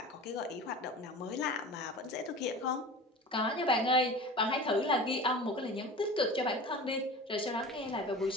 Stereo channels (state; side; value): normal; both; correlation 0.36